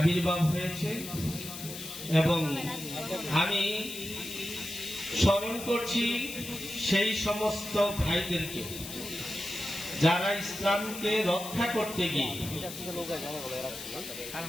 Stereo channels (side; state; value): left; noise; hiss, 10 dB below the sound